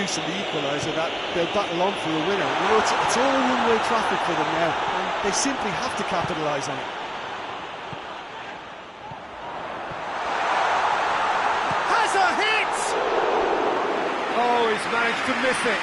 the equaliser that they'll battle on for a winner. You know, it's all one-way traffic for them now, and they simply have to capitalise on it. Oh, he's managed to miss it.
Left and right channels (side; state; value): both; identical; correlation 1.00